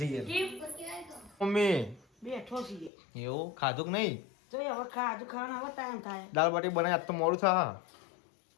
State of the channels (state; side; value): drops out; right; at 2.9 s